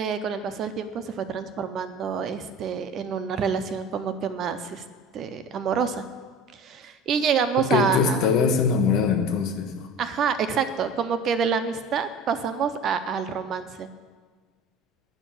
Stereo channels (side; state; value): both; normal; correlation 0.38